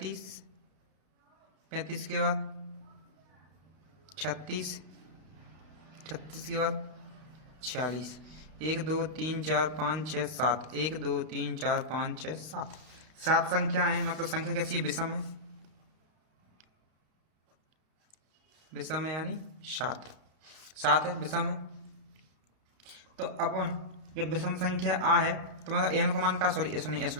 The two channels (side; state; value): left; late; 32 ms